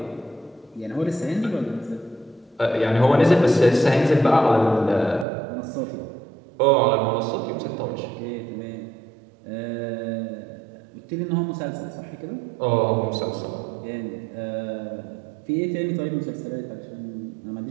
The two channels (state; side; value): drops out; left; at 5.2 s